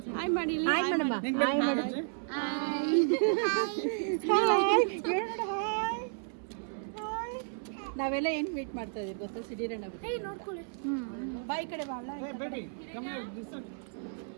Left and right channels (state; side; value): silent; left; 56 dB below the other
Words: ಹಾಯ್ ಮಾಡಿ. ಹಾಯ್ ಮಾಡಮ್ಮ. ಹಾಯ್ ಮಾಡು. ನಾವೆಲ್ಲ ಏನು ಮೀಟ್ ಮಾಡ್ತಾ ಇದೀವಿ ಗೊತ್ತಾ? ಸಿಡಿರಣ್ಣ ನೋಡ್ಕೊಳ್ಳಿ. ಬಾಯಿ ಕಡೆ ಬಾಳ